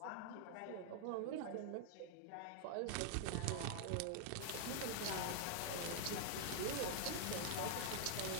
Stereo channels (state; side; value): different; both; correlation -0.01